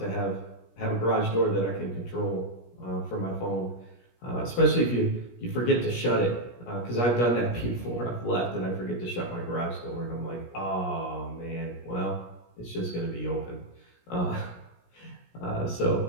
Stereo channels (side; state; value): right; late; 17 ms